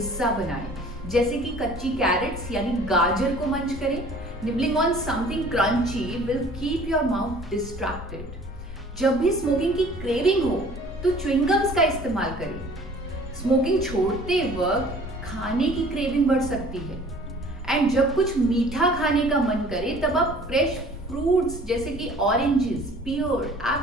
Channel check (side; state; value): both; normal; correlation 0.50